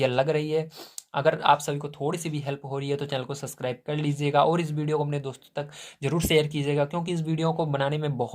लग रही है, अगर आप सभी को थोड़ी सी भी हेल्प हो रही है तो चैनल को सब्सक्राइब कर लीजिएगा और इस वीडियो को अपने दोस्तों तक जरूर शेयर कीजिएगा, क्योंकि इस वीडियो को बनाने में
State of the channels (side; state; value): both; identical; correlation 1.00